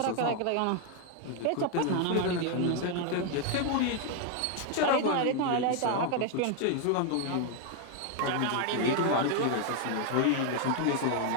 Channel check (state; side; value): different; both; correlation 0.00